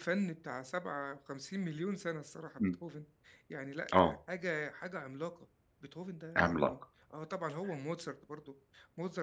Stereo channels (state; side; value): identical; both; correlation 1.00